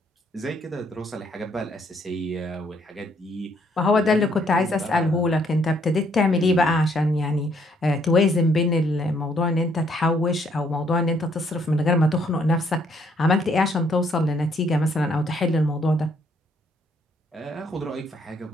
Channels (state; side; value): normal; both; correlation 0.68